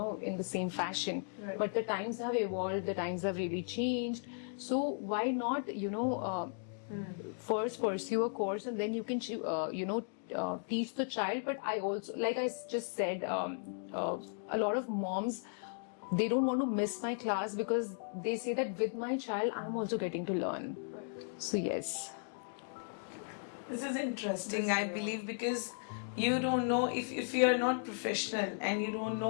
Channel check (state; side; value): silent; right; digital silence